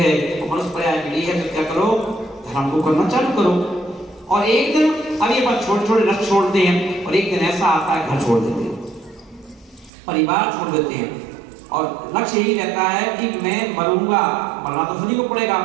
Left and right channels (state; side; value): drops out; left; at 9.9 s